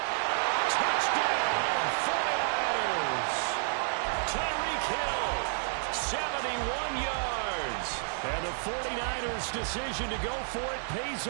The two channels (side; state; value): left; silent; 57 dB below the other